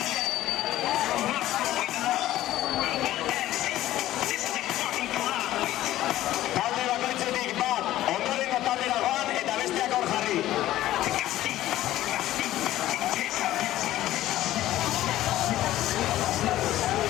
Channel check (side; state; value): right; quieter; 14.4 dB